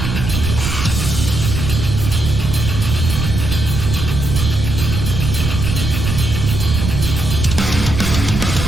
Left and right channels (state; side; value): noise; right; rumble, 3 dB below the sound